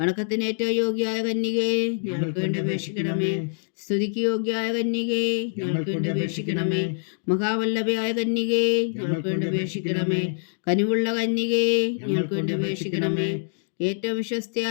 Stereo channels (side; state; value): right; silent; digital silence